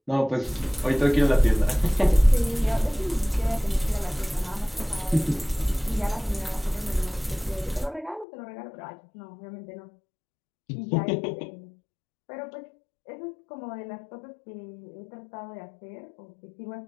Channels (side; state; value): right; drops out; at 8.2 s